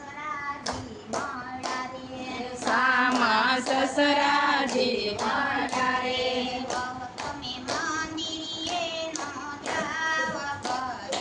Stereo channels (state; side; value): identical; both; correlation 1.00